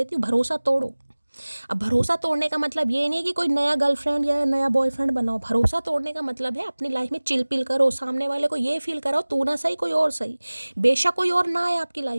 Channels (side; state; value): both; inverted; correlation -1.00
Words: हूँ, भरोसा तोड़ो। अब भरोसा तोड़ने का मतलब ये नहीं कि कोई नया गर्लफ्रेंड या नया बॉयफ्रेंड बनाओ। भरोसा तोड़ने का मतलब है अपनी लाइफ में चिल पिल करो, सामने वाले को ये फील कराओ तू ना सही कोई और सही, बेशक कोई और ना आए आपकी